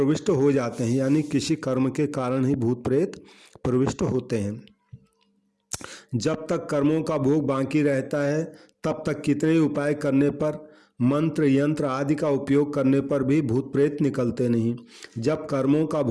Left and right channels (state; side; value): identical; both; correlation 1.00